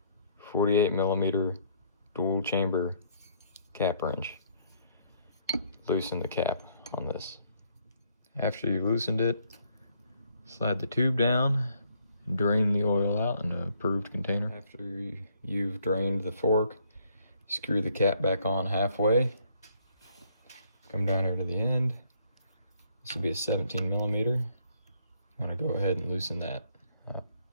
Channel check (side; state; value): both; inverted; correlation -0.67